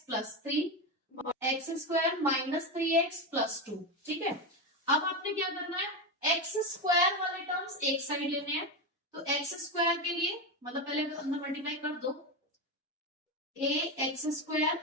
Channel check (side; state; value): both; normal; correlation 0.14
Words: plus 3 और x square minus 3x plus 2। ठीक है, अब आपने क्या करना है, एक्स स्क्वायर वाले टर्म्स एक साइड लेने हैं। तो एक्स स्क्वायर के लिए मतलब पहले अंदर मल्टीप्लाई कर दो, a x square